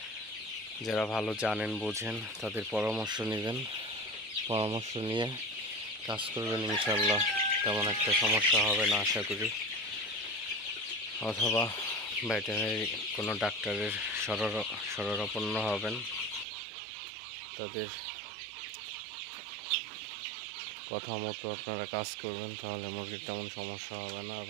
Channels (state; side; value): drops out; left; at 16.4 s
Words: যারা ভালো জানেন বোঝেন তাদের পরামর্শ নেবেন, পরামর্শ নিয়ে কাজ করবেন। ইনশাল্লাহ তেমন একটা সমস্যা হবে না আশা করি। অথবা ভেটেরিনারি কোনো ডাক্তারের শরণাপন্ন হবেন, তাদের কথা মতো আপনারা কাজ করবেন, তাহলে মুরগির তেমন সমস্যা হবে না